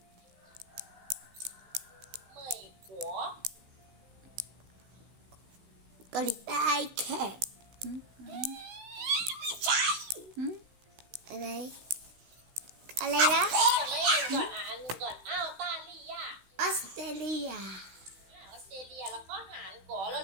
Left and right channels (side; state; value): left; late; 16 ms